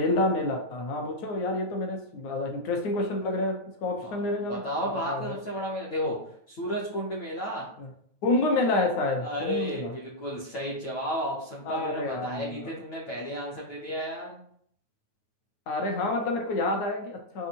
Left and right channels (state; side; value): late; right; 9.2 ms